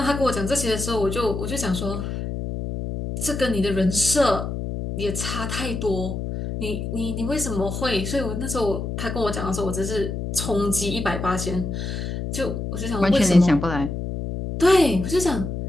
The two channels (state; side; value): noise; left; hum, 4 dB below the sound